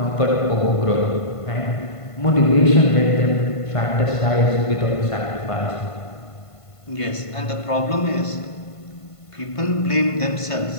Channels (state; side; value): late; right; 1.5 ms